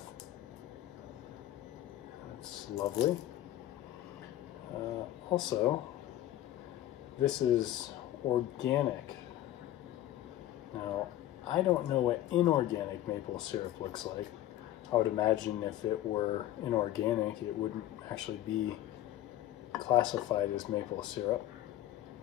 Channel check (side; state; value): right; quieter; 13.5 dB